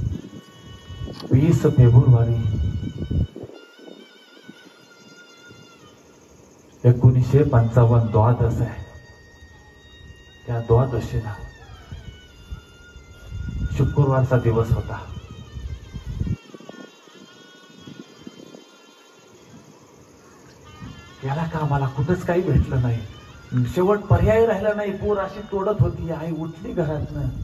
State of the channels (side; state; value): both; identical; correlation 1.00